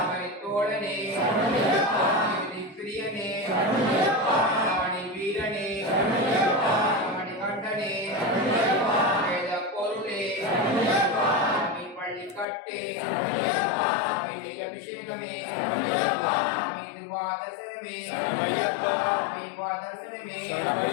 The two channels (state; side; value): drops out; right; at 12.5 s